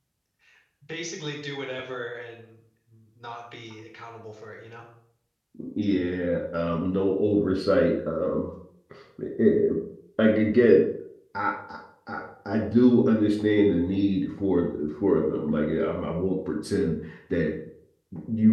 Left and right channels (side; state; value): both; identical; correlation 1.00